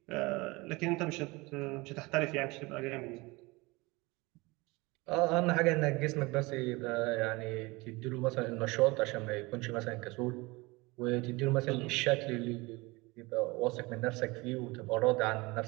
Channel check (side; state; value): left; quieter; 23.8 dB